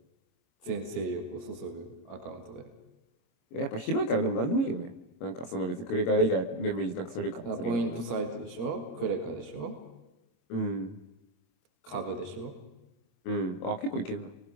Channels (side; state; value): right; late; 25 ms